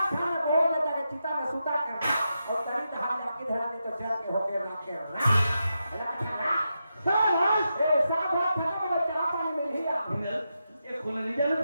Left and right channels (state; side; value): inverted; both; correlation -0.87